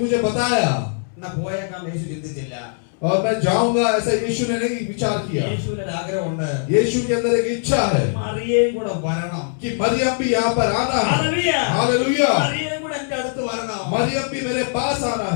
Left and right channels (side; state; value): right; silent; digital silence